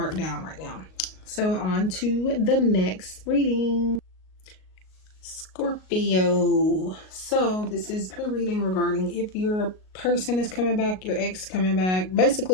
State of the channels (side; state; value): right; late; 38 ms